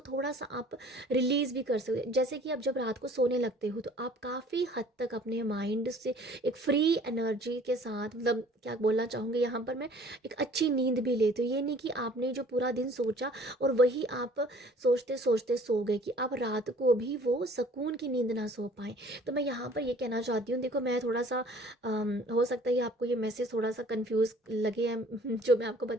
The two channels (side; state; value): both; normal; correlation 0.52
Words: थोड़ा सा आप रिलीज़ भी कर सकते हो। जैसे कि आप जब रात को सोने लगते हो तो आप काफ़ी हद तक अपने माइंड से एक फ्री एनर्जी के साथ, मतलब क्या बोलना चाहूँगी यहाँ पर मैं, एक अच्छी नींद भी लेते हो। ये नहीं कि आपने जो पूरा दिन सोचा और वही आप सोचते सोचते सो गए, कि आप रात को भी वो सुकून की नींद ना सो पाएँ। तो मैं यहाँ पर ये कहना चाहती हूँ, देखो मैं थोड़ा सा हो सकता है आपको ये मैसेज थोड़ा सा कंफ्यूज लगे हैं जो मैं आपको